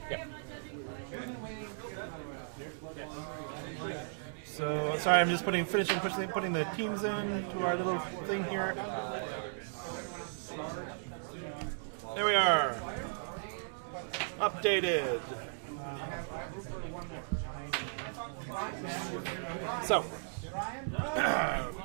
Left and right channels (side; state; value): left; silent; digital silence